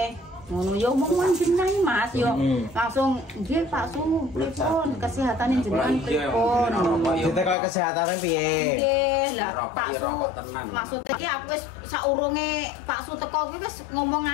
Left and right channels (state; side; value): drops out; right; at 7.6 s